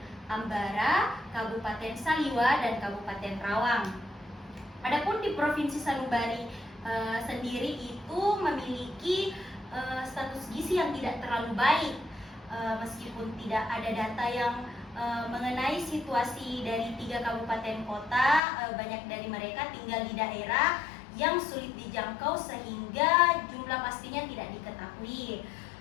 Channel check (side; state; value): right; drops out; at 18.4 s